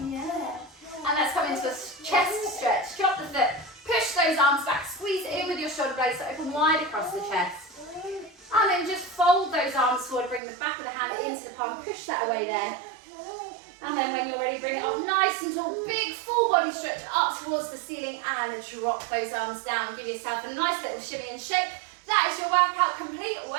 Yeah. And let's come into a chest stretch. Drop the foot, push those arms back, squeeze it in with your shoulder blades to open wide across the chest. And then just fold those arms forward, bring the back of the hand into the palm, push that away there. And then when you're ready, bring it up nice and tall, big full body stretch up towards the ceiling and drop those arms down. Give yourself a nice little shimmy and shake. That is your workout complete.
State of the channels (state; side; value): drops out; left; at 10.4 s